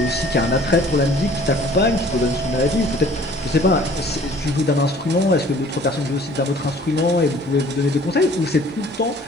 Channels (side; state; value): both; normal; correlation 0.52